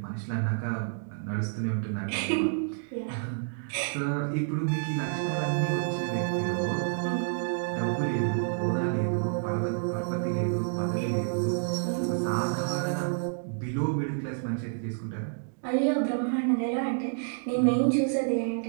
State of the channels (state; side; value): silent; left; digital silence